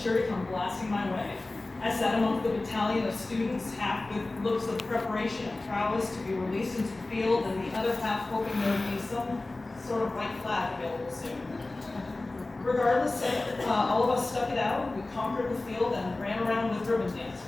to come blasting my way. I sat among the battalion of students, half with looks of preparation and prowess to be released into the field, and the other half hoping there would be some sort of white flag available soon. Regardless, all of us stuck it out. We conquered the field and ran around with ribbon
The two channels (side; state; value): right; quieter; 3.0 dB